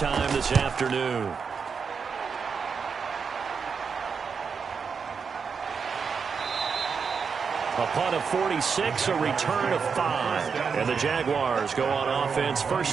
this afternoon. A punt of 46, a return of 5. And the Jaguars go on offense,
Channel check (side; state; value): left; quieter; 5.8 dB